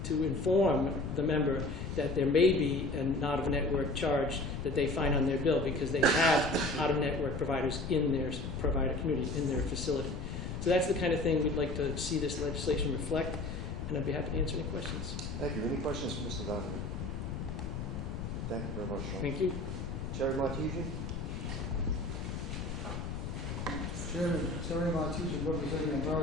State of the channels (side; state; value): left; noise; rumble, 5 dB below the sound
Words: to inform the member that there may be an out-of-network charge that they find on their bill because they have out-of-network providers in their provider community, in their facility. So that's the kind of thing we'd like to see this legislation reflect, and I'd be happy to answer any questions. Thank you. Any questions for Mr. Donovan? Thank you very much, Sean. Thank you. Terry Martesian? Chairman, Terry Martesian, representing